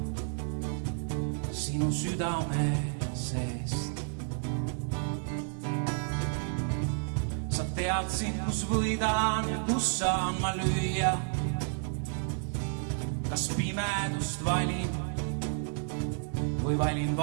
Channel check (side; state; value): left; silent; 57 dB below the other